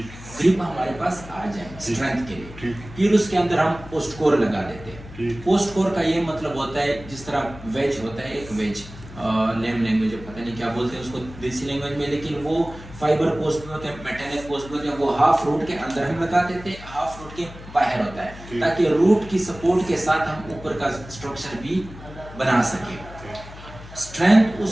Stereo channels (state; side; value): noise; left; hum, 16 dB below the sound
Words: ग्रिप हमारे पास आ जाए स्ट्रेंथ के लिए। फिर उसके अंदर हम पोस्ट कोर लगा देते हैं। पोस्ट कोर का ये मतलब होता है, जिस तरह वेज होता है, एक वेज नेम लैंग्वेज पता नहीं क्या बोलते हैं उसको देसी लैंग्वेज में, लेकिन वो फाइबर पोस्ट भी होते हैं, मेटेलिक पोस्ट भी होते हैं, वो हाफ रूट के अंदर हम लगा देते हैं, हाफ रूट के बाहर होता है, ताकि रूट की सपोर्ट के साथ हम ऊपर का स्ट्रक्चर भी बना सके। स्ट्रेंथ